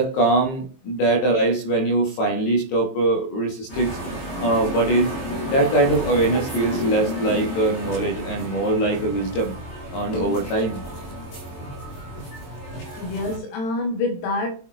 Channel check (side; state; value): right; late; 23 ms